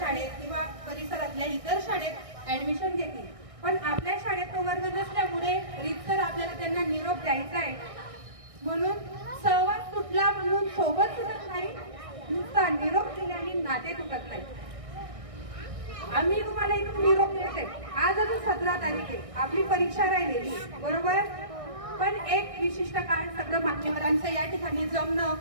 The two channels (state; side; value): late; left; 1.6 ms